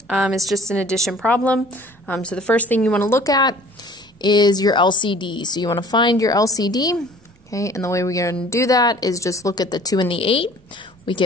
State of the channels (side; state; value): both; normal; correlation 0.50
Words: is just an addition problem. So the first thing you want to look at is your LCD. So you want to find your LCD. Okay, and the way we're going to do that is just look at the 2 and the 8. We